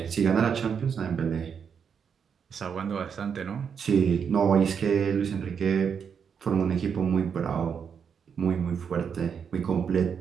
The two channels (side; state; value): left; quieter; 7.0 dB